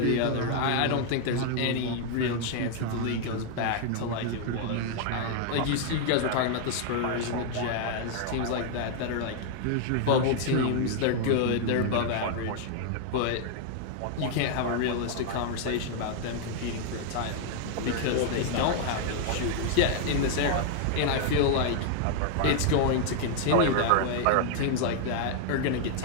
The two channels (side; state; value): both; different; correlation 0.00